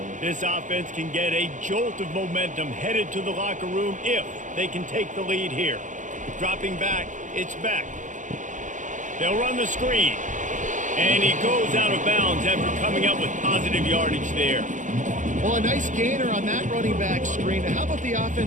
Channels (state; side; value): late; left; 0.37 ms